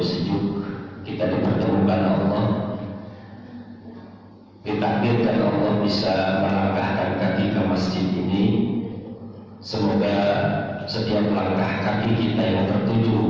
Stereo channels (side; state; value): both; identical; correlation 1.00